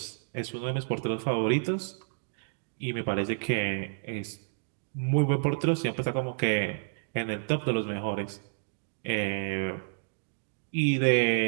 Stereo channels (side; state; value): left; silent; digital silence